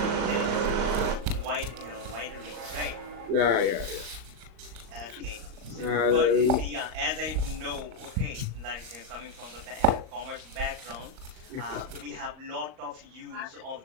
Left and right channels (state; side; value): late; left; 38 ms